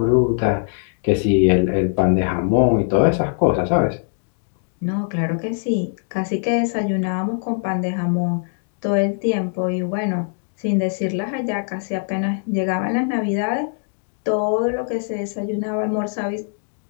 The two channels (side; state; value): right; silent; digital silence